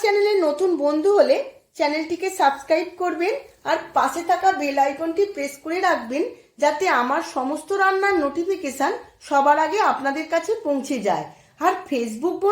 চ্যানেলে নতুন বন্ধু হলে চ্যানেলটিকে সাবস্ক্রাইব করবেন আর পাশে থাকা বেল আইকনটি প্রেস করে রাখবেন, যাতে আমার সমস্ত রান্নার নোটিফিকেশন সবার আগে আপনাদের কাছে পৌঁছে যায়। আর ফেসবুক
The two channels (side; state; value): both; identical; correlation 1.00